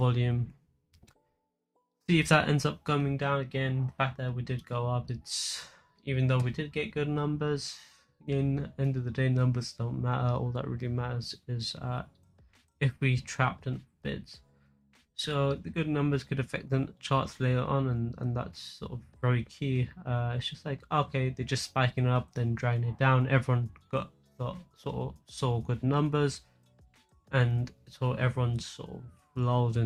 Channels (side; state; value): both; identical; correlation 1.00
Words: See if that ends up coming down again. The fact that we did go up, it's, even though we did get good numbers, in end of the day, numbers don't matter. All that really matters is if we trapped in bids. So the good numbers could affect the charts later on, and that's sort of very key. It's just like, okay, they're just spiking up, then dragging it down. Everyone got sort of saw good numbers, and so everyone's sort of lulled